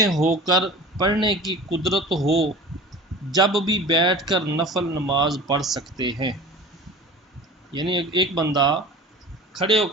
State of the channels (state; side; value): normal; both; correlation 0.38